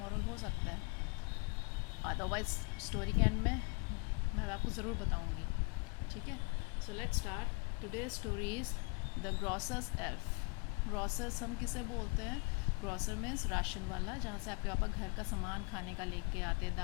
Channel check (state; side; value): quieter; right; 32.5 dB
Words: हो सकता है. अदरवाइज स्टोरी के एंड में मैं आपको ज़रूर बताऊँगी, ठीक है. So let's start. Today story is the grocers elf. Grocers हम किसे बोलते हैं? ग्रॉसर मीन्स राशन वाला, जहाँ से आपके पापा घर का सामान खाने का लेके आते हैं.